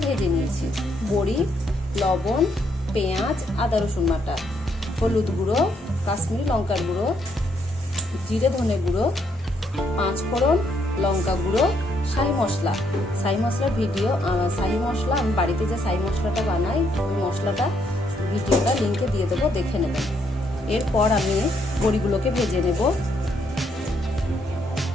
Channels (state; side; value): normal; both; correlation 0.73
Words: ভেজে নিয়েছি। বড়ি, লবণ, পেঁয়াজ, আদা রসুন বাটা, হলুদ গুঁড়ো, কাশ্মীরি লঙ্কার গুঁড়ো, জিরে ধনে গুঁড়ো, 5 ফোড়ন, লঙ্কা গুঁড়ো, শাহি মশলা। শাহি মশলার শাহি মশলা আমি বাড়িতে যে শাহি মশলাটা বানাই, ওই মশলাটা ভিডিওটা লিঙ্কে দিয়ে দেবো, দেখে নেবেন। এরপর আমি বড়িগুলোকে ভেজে নেব।